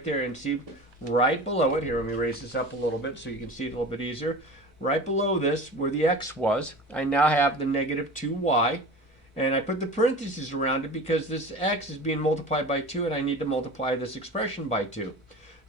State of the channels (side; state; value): both; normal; correlation 0.35